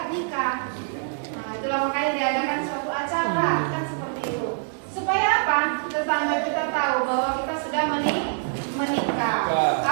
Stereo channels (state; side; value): silent; left; 61 dB below the other